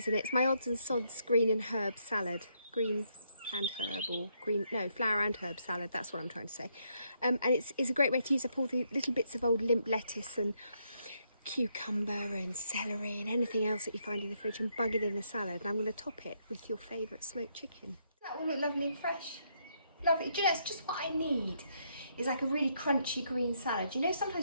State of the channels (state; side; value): inverted; both; correlation -0.75